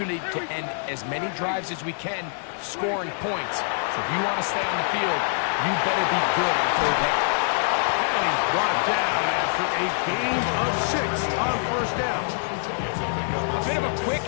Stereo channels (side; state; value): right; silent; digital silence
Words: to end as many drives as we can, scoring points. So if you want to stay on the field, you better be good on 3rd down. And he's brought down after a gain of 6 on 1st down. A bit of a quick